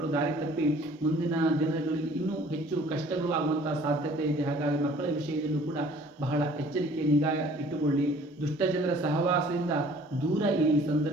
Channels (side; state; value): both; normal; correlation 0.53